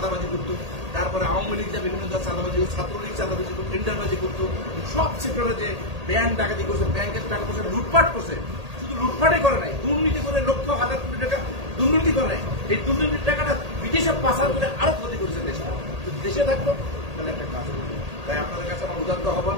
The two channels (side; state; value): left; late; 1.8 ms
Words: করতো, তারপরে আওয়ামী লীগ যা বিভিন্ন চাঁদাবাজি, ছাত্রলীগ চাঁদাবাজি করতো, টেন্ডারবাজি করতো, সব সেক্টরে যে ব্যাংক ডাকাতি করছে, ব্যাংকের টাকা পয়সা লুটপাট করছে, শুধু লুটপাটই করে নাই, দুর্নীতি করে লক্ষ হাজার কোটি টাকা দুর্নীতি করে নাই। এই দুর্নীতির টাকাটা বিদেশে পাচার করে আরো ক্ষতি করেছে দেশটা। যদি দেশে থাকতো তাহলে একটা কাজ করতো। তাই আপনাদের কাছে আমার উদাত্ত